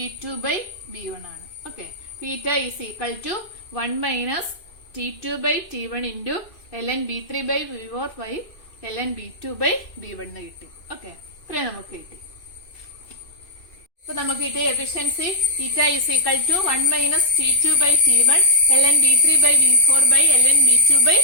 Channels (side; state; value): right; late; 2.6 ms